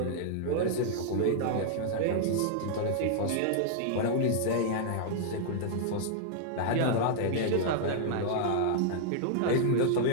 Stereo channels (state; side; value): different; both; correlation -0.01